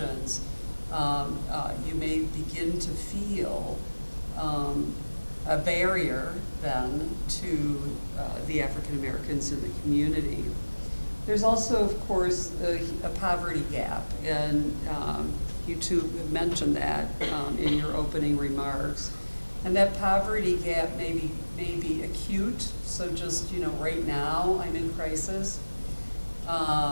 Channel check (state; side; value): inverted; both; correlation -1.00